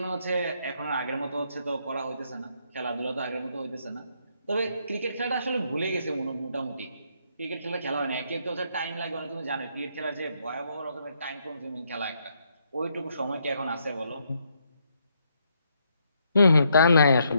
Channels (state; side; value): inverted; both; correlation -0.74